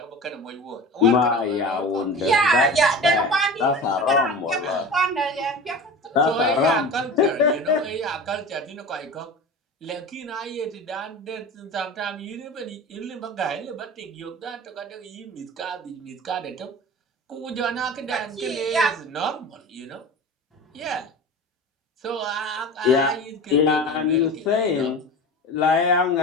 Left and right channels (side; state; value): both; normal; correlation 0.33